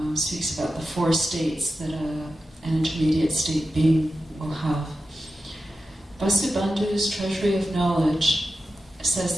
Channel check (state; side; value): normal; both; correlation 0.92